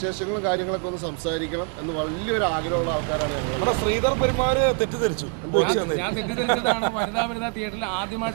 കാര്യങ്ങളൊക്കെ ഒന്ന് സംസാരിക്കണം എന്ന് വലിയൊരു ആഗ്രഹമുള്ള ആൾക്കാരാണ് ഞങ്ങൾ. നമ്മുടെ ശ്രീധർ പെരുമാറ് തെറ്റിദ്ധരിച്ചു. ഞാൻ തെറ്റിദ്ധരിച്ചതാണ്. വനിതാ തിയേറ്ററിൽ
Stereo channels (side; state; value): left; quieter; 37.5 dB